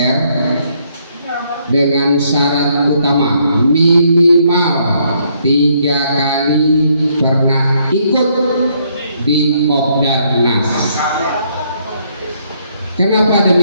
dengan syarat utama minimal 3 kali pernah ikut di Kopdarnas. Kenapa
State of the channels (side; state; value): both; inverted; correlation -0.71